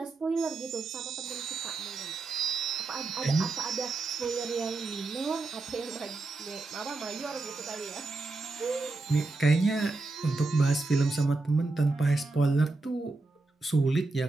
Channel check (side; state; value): left; quieter; 3.5 dB